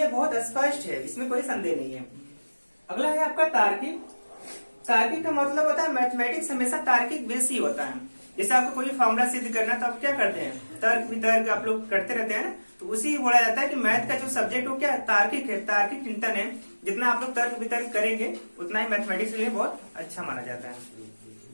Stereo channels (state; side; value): inverted; both; correlation -1.00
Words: बहुत स्पष्ट है, इसमें कोई संदेह नहीं है। अगला है आपका तार्किक। तार्किक का मतलब होता है मैथमेटिक्स हमेशा तार्किक बेस ही होता है। जैसे आपको कोई फॉर्मूला सिद्ध करना है तो आप क्या करते हैं, तर्क वितर्क आप लोग करते रहते हैं ना, तो उसी बोला जाता है कि मैथ का जो सब्जेक्ट हो क्या है, तार्किक है, तार्किक चिंतन है। जितना आप लोग तर्क वितर्क करेंगे उतना ही मैथमेटिक्स के लिए बहुत अच्छा माना जाता है।